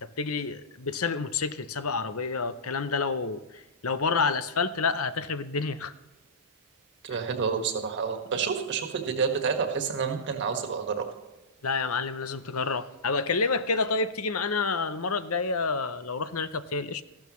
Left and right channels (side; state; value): both; normal; correlation -0.19